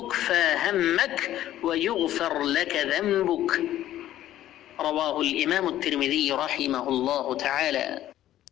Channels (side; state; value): right; quieter; 13.0 dB